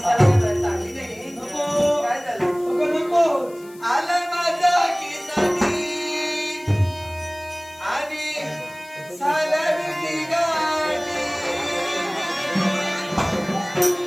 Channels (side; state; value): left; noise; hiss, 24 dB below the sound